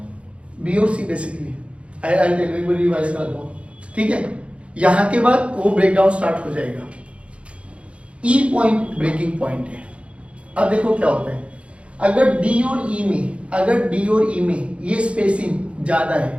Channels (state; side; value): late; left; 0.061 ms